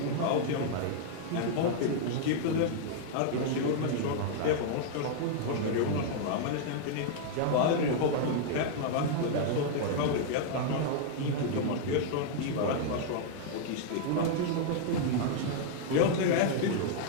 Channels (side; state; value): both; different; correlation -0.01